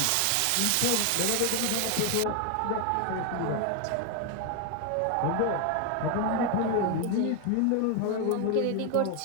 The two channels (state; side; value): different; both; correlation 0.01